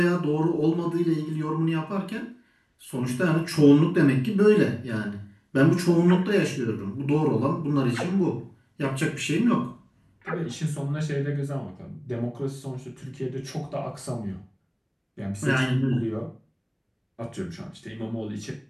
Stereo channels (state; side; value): identical; both; correlation 1.00